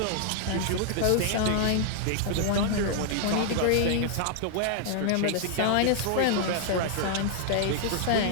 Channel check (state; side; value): different; both; correlation -0.01